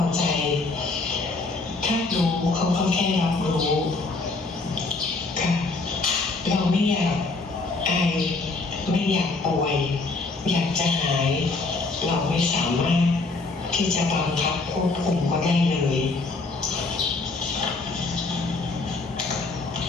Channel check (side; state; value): right; quieter; 3.6 dB